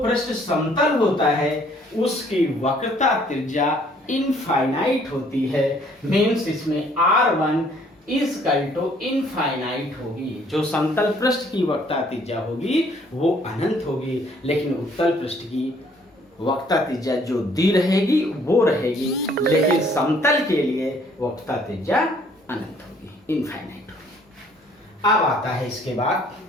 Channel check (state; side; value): normal; both; correlation 0.61